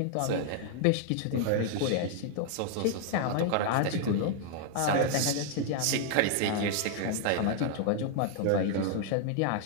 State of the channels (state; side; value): different; both; correlation 0.00